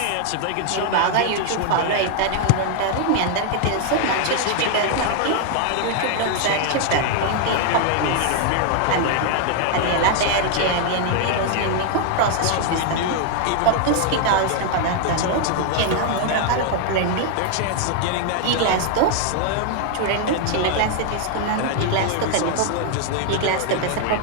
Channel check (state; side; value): different; both; correlation 0.00